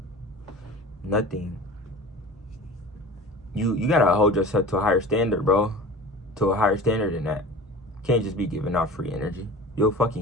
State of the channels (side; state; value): both; normal; correlation 0.38